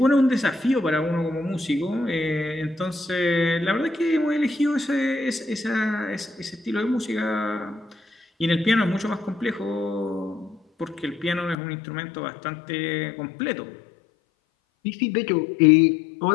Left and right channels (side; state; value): right; drops out; at 11.6 s